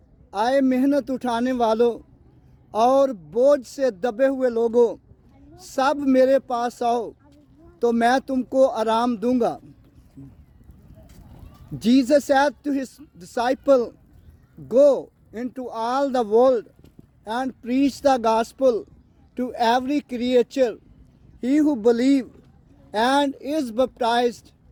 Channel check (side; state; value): both; identical; correlation 1.00